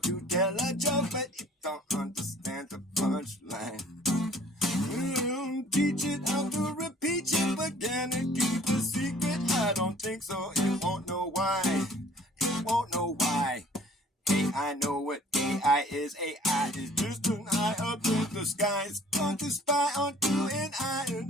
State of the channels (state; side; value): normal; both; correlation 0.53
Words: tell a joke, but it don't understand the punchline. Teach it how to repeat it again and keep the secret. I don't think so. It won't know why. It won't know why. Hey, I know what AI is. AI is just an eye up in the sky. It's going to spy on you and I